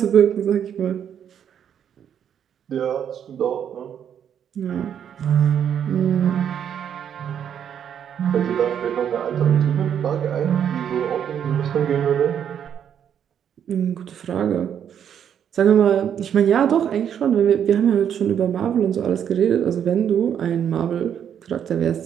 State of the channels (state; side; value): quieter; left; 8.8 dB